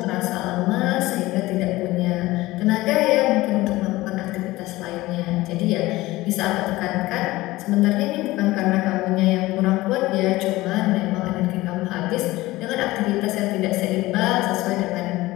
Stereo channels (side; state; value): right; quieter; 18.7 dB